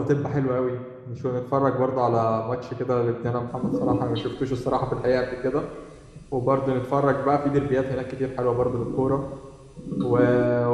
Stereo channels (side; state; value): both; identical; correlation 1.00